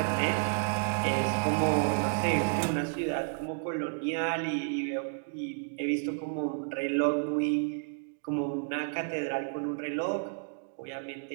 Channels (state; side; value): silent; left; digital silence